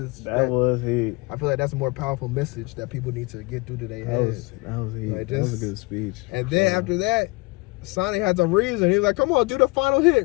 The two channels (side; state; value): right; quieter; 25.7 dB